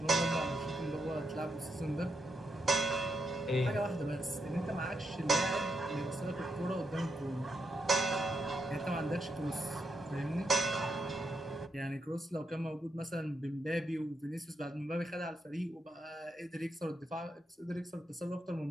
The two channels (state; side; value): normal; both; correlation 0.83